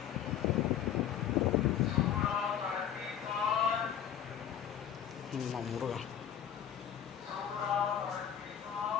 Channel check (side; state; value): right; quieter; 9.5 dB